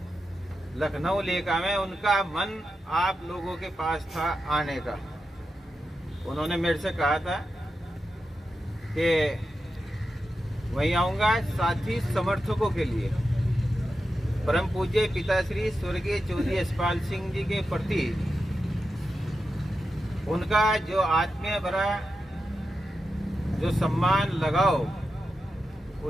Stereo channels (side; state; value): both; normal; correlation 0.89